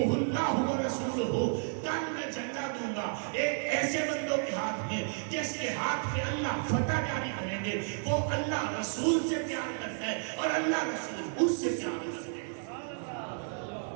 اللہ ورسولہ. کل میں جھنڈا دوں گا ایک ایسے بندوں کے ہاتھ میں جس کے ہاتھ پہ اللہ فتح جاری کریں گے، وہ اللہ رسول سے پیار کرتا ہے اور اللہ رسول اس سے پیار کرتا ہے.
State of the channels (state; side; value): silent; left; 56 dB below the other